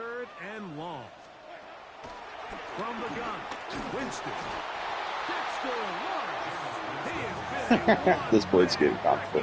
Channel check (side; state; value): both; identical; correlation 1.00